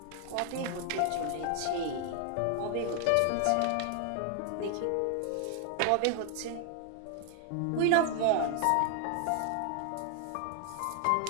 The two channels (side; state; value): both; different; correlation 0.00